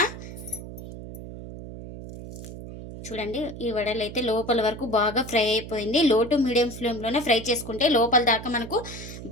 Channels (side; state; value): right; noise; hum, 11 dB below the sound